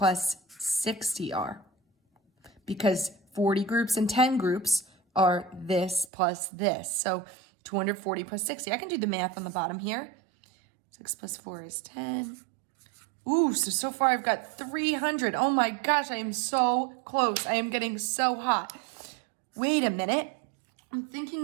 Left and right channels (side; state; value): left; drops out; at 6.1 s